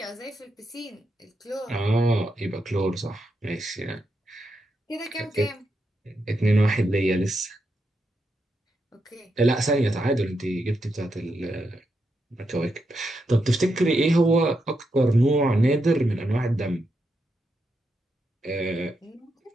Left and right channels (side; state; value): both; normal; correlation 0.84